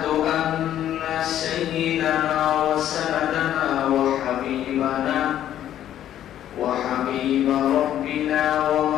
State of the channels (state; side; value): quieter; right; 11.4 dB